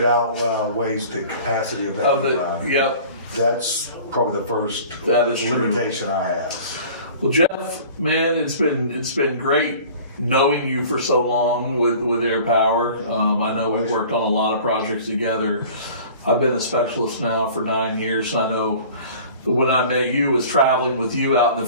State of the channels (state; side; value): inverted; both; correlation -0.45